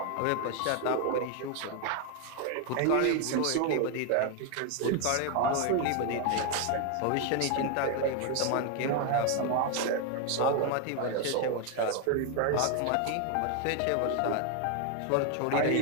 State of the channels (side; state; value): both; different; correlation 0.01